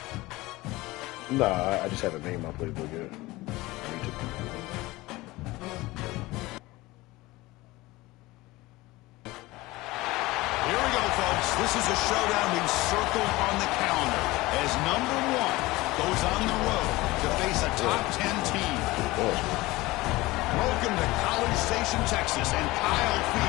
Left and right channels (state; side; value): quieter; right; 20.1 dB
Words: Nah, I just haven't made my playbook yet. I need to. Here we go, folks. This is a showdown we've circled on the calendar as number 1 goes on the road to face a top 10 team. Welcome to College Station, Texas, and Kyle